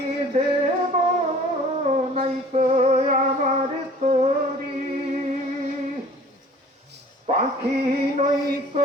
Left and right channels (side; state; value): both; normal; correlation 0.48